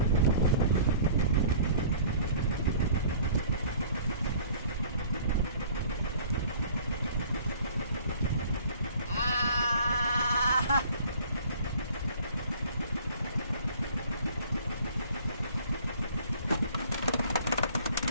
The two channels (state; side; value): inverted; both; correlation -0.51